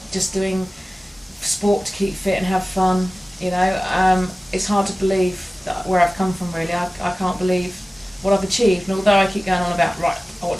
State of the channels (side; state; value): both; normal; correlation 0.97